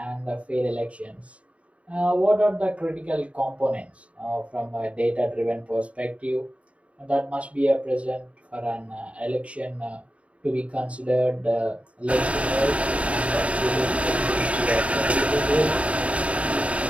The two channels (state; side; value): late; left; 0.064 ms